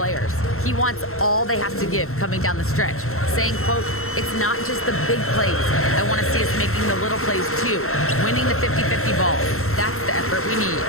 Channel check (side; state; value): right; late; 0.63 ms